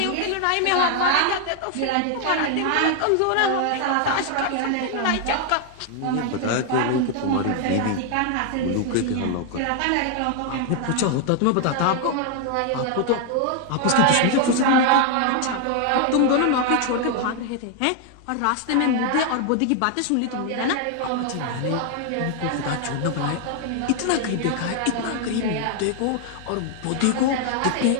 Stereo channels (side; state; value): both; different; correlation 0.00